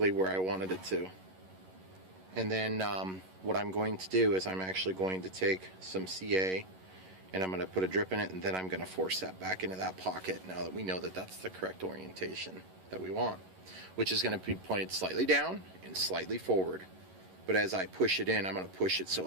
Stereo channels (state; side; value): late; left; 11 ms